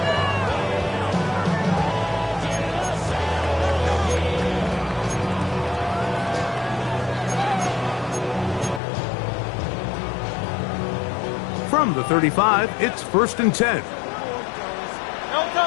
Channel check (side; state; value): right; drops out; at 8.8 s